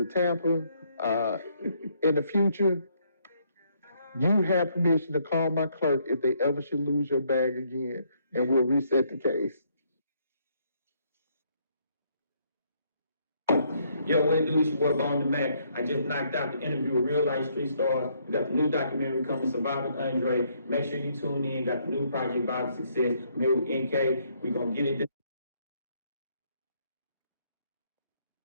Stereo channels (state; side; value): inverted; both; correlation -0.70